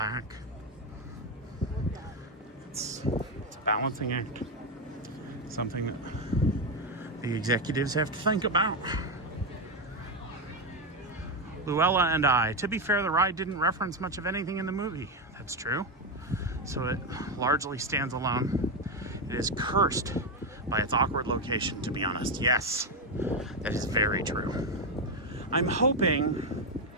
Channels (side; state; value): both; normal; correlation 0.08